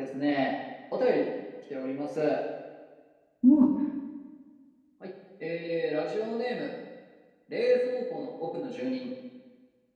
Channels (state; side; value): identical; both; correlation 1.00